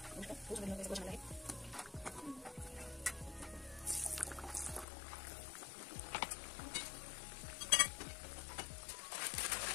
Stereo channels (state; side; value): drops out; right; at 4.9 s